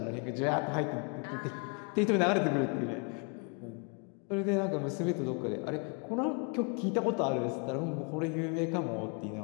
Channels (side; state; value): right; quieter; 34.8 dB